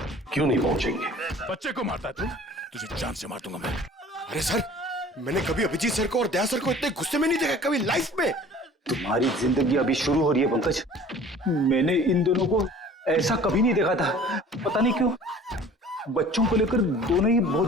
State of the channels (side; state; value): both; normal; correlation 0.47